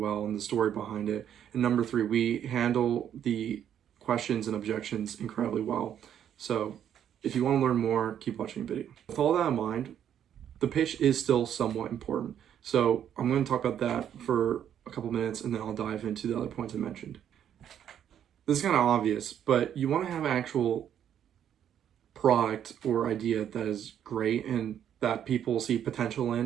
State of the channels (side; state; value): left; quieter; 9.7 dB